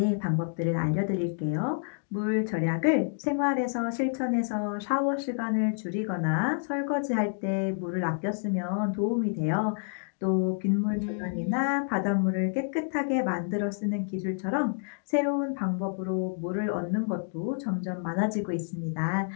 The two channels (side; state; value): right; silent; digital silence